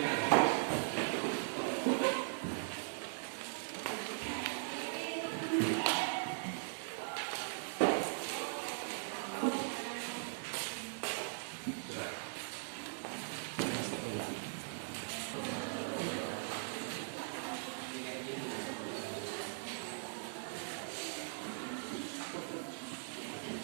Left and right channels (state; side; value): silent; left; digital silence